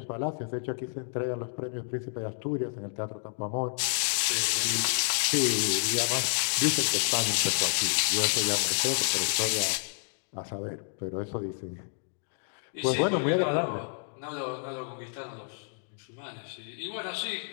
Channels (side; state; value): right; silent; digital silence